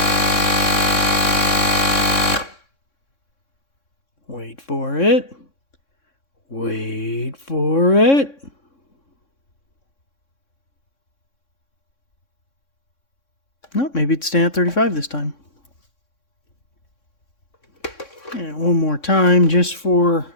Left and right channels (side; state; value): right; late; 3.6 ms